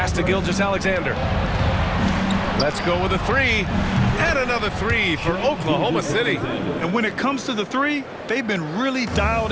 to Gilgeous-Alexander. Let's go with a 3. And another 3 for Oklahoma City. And when it comes to the 3, they've been really dialed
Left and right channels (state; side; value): identical; both; correlation 1.00